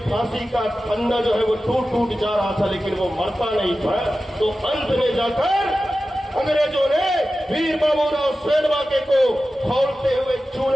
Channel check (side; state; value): both; normal; correlation 0.94